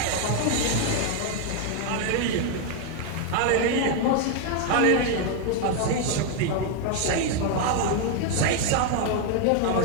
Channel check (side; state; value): both; different; correlation 0.01